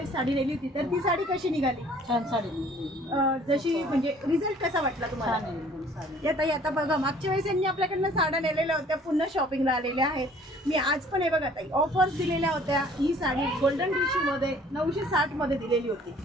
साडी नेली होती तर ती साडी कशी निघाली? छान साडी जशी म्हणजे रिझल्ट कसा वाटला तुम्हाला? या ताई आता बघा मागच्या वेळेस यांनी आपल्याकडनं साड्या नेलेल्या होत्या पुन्हा शॉपिंगला आलेल्या आहेत. मी आज पण हे बघा ताई ऑफर्स दिलेल्या होत्या. ही साडी गोल्डन टिश्यू मध्ये 960 मध्ये दिलेली होती.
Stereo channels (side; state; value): both; normal; correlation 0.55